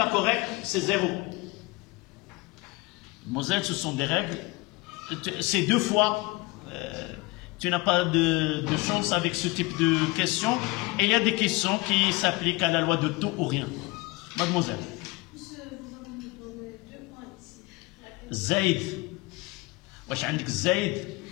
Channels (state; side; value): quieter; right; 23.4 dB